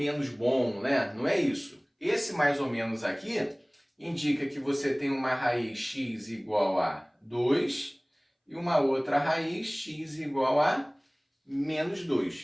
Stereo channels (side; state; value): both; identical; correlation 1.00